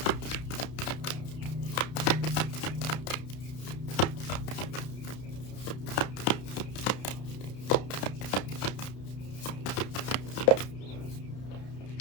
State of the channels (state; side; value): late; right; 32 ms